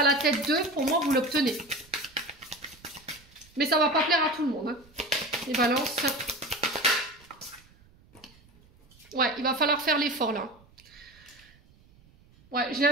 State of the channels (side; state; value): right; noise; rumble, 28 dB below the sound